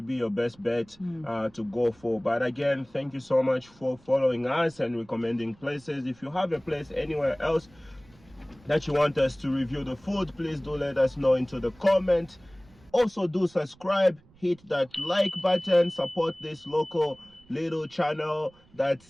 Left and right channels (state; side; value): noise; right; rumble, 28 dB below the sound